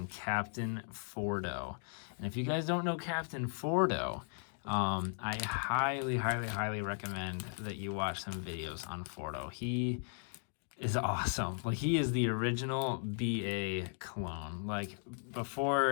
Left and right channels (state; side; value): silent; right; 53 dB below the other